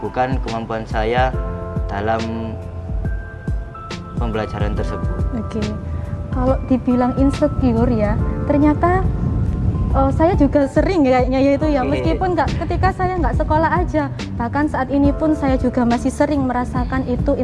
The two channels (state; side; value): identical; both; correlation 1.00